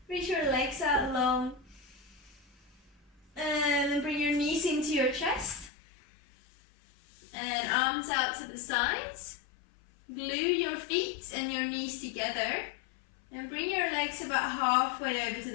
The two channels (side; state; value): right; drops out; at 5.7 s